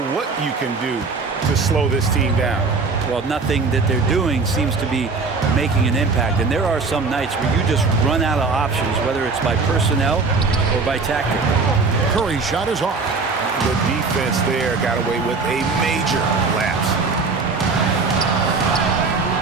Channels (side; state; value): left; quieter; 4.3 dB